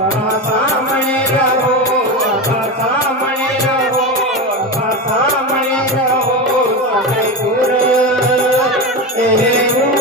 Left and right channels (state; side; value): normal; both; correlation 0.19